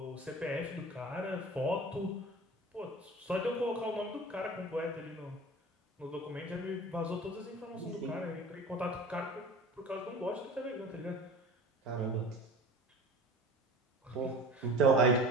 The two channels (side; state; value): both; normal; correlation 0.39